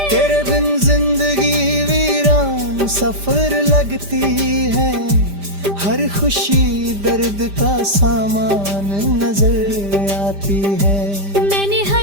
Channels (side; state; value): left; late; 5.0 ms